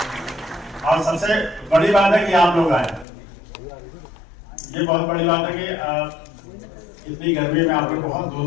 और सबसे बड़ी बात है कि आप लोग आए, ये बहुत बड़ी बात है कि इतनी गर्मी में आप लोग बहुत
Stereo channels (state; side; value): drops out; right; at 3.1 s